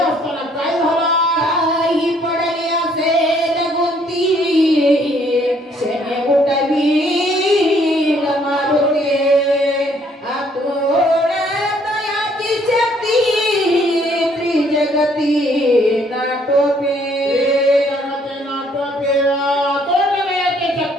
काय झालं? काही पडले असेल गुंती शने उठवी मारुती. तयाची शक्ती त्रिजगती नाटोपे.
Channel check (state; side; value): normal; both; correlation 0.64